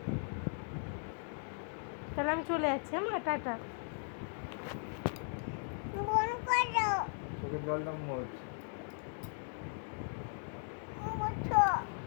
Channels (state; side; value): silent; right; 53 dB below the other